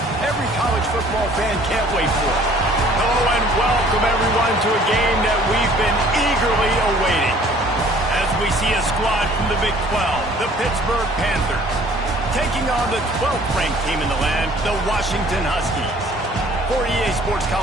every college football fan can't wait for. Hello and welcome everyone to a game that we've been eagerly awaiting. As we see a squad from the Big 12, the Pittsburgh Panthers, taking on the 12th ranked team in the land, the Washington Huskies. For EA Sports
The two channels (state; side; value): normal; both; correlation 0.54